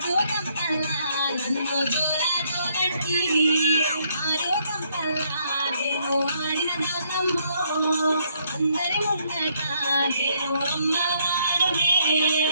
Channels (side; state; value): both; inverted; correlation -0.70